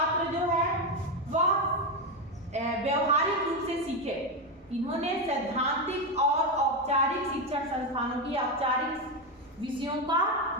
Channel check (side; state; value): both; normal; correlation 0.10